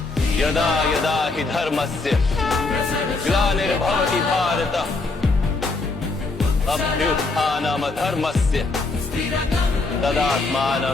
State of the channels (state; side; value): quieter; right; 3.6 dB